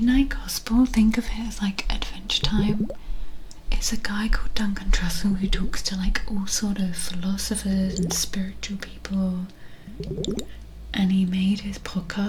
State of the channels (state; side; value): identical; both; correlation 1.00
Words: Gospel, think of it as like Adventure Time. It's a guy called Duncan Trussell who talks to like all sort of philosophers and spiritual people. And he made his